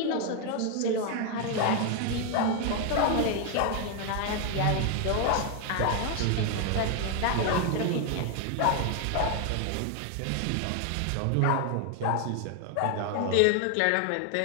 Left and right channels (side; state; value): both; different; correlation 0.01